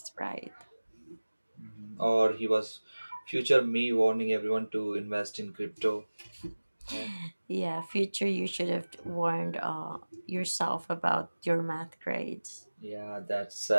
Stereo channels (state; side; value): inverted; both; correlation -1.00